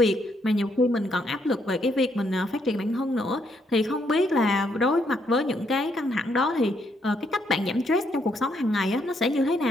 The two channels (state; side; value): normal; both; correlation 0.74